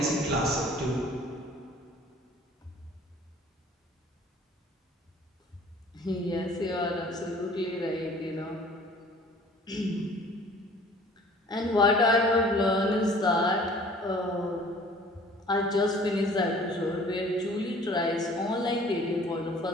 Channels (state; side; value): normal; both; correlation 0.51